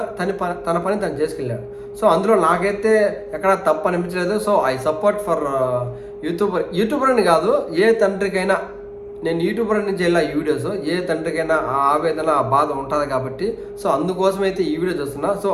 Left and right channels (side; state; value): both; identical; correlation 1.00